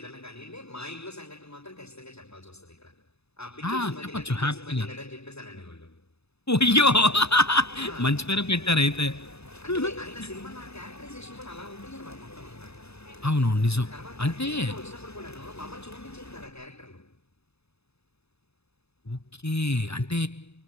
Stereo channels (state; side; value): late; right; 0.79 ms